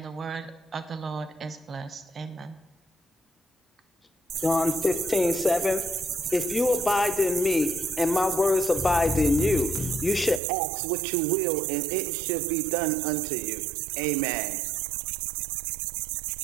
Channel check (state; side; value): drops out; left; at 10.4 s